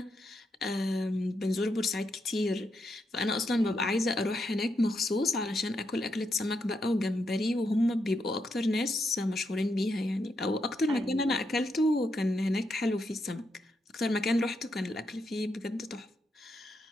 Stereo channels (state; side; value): normal; both; correlation 0.82